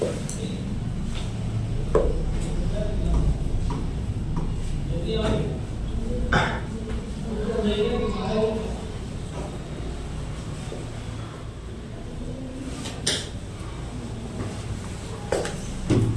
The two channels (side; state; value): both; identical; correlation 1.00